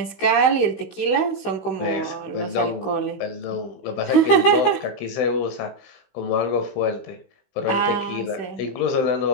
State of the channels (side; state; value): right; late; 16 ms